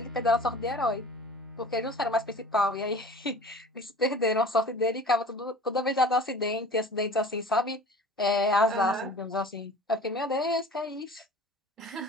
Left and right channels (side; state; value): both; normal; correlation 0.42